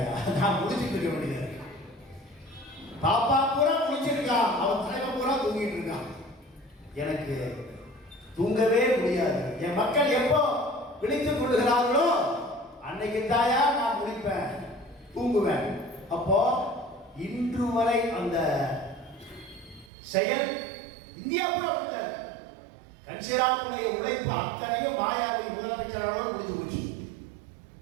நான் முடிச்சுட்டு இருக்க வேண்டியது. பாப்பா பூரா முடிச்சிருக்கான், அவன் தலைவன் பூரா தூங்கிட்டு இருக்கான், எனக்கு தூங்கவே முடியாது. என் மக்கள் எப்போ விழித்துக் கொள்ளுகிறார்களோ அன்னைக்கு தாயா நான் முடிப்பேன், தூங்குவேன். அப்போ இன்று வரை அந்த செயல் இந்தியா கூட அப்படித்தாரு. கன்சிராவுடைய உழைப்பு அத்தனையும் மாயாவை முதலமைச்சரோட முடிஞ்சு போச்சு.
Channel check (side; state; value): left; drops out; at 19.9 s